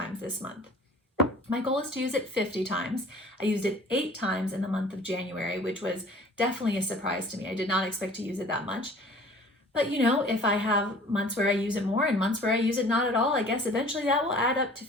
this month. My goal is to use it 50 times. I used it 8 times in the month of January, which was definitely a surprise to me. I did not expect to use it that much. But you know, if I have months where I use it more and months where I use it not at all, I guess eventually that will add up to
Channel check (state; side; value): normal; both; correlation 0.48